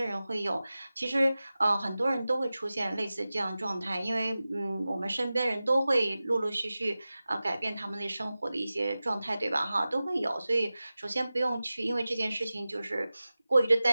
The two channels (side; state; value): both; inverted; correlation -0.96